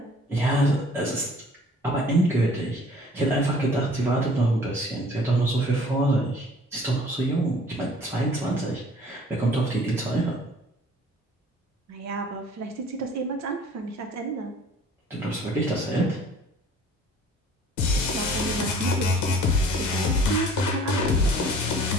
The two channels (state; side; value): normal; both; correlation 0.52